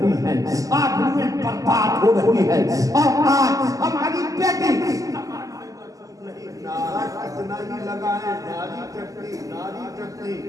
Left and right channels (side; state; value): left; late; 0.17 ms